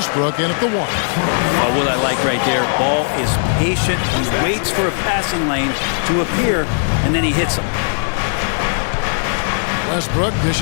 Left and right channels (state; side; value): silent; right; digital silence